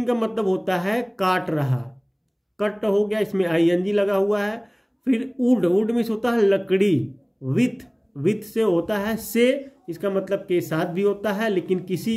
का मतलब होता है काट रहा, कट हो गया, इसमें आईएनजी लगा हुआ है। फिर वुड में होता है लकड़ी। विथ से होता है से, इसका मतलब के साथ भी होता है, लेकिन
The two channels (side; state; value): both; identical; correlation 1.00